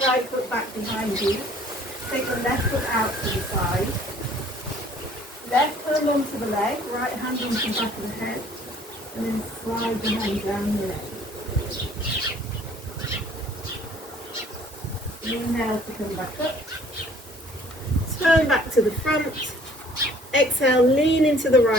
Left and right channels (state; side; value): normal; both; correlation 0.56